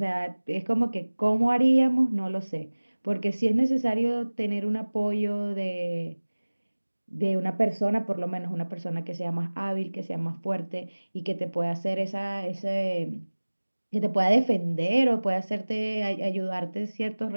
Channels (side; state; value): both; inverted; correlation -1.00